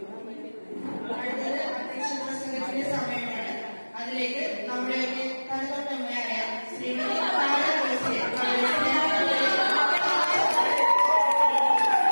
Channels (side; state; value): both; inverted; correlation -1.00